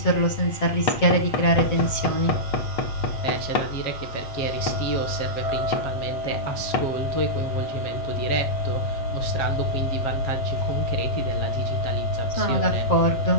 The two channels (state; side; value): late; right; 7.7 ms